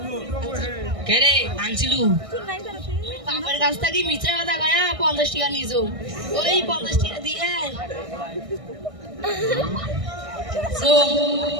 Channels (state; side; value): late; left; 1.6 ms